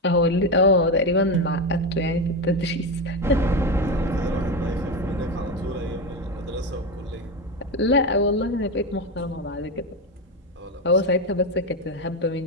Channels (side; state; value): both; normal; correlation 0.14